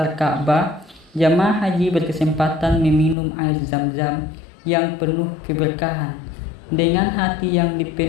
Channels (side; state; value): right; drops out; at 3.2 s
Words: Ka'bah, jamaah haji berkesempatan meminum air Zam-Zam yang penuh keberkahan. Dengan hati yang